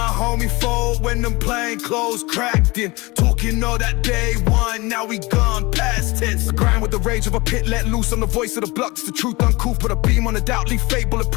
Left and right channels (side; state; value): right; quieter; 23.5 dB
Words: homie fold when them plain clothes cracked in. Talking all that day one, now we gone past tense. I grind with the rage of a pit let loose. I'm the voice of the block, it's the truth uncouth. Put a beam on the doubt, leave fate